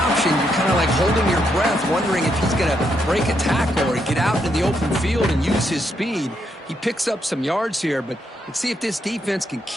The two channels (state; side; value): normal; both; correlation 0.78